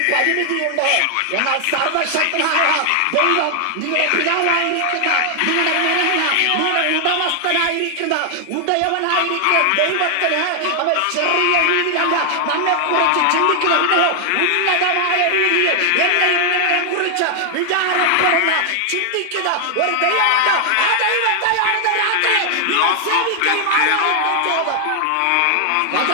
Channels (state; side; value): different; both; correlation 0.00